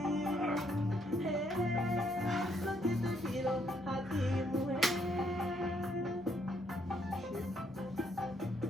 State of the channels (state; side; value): normal; both; correlation 0.71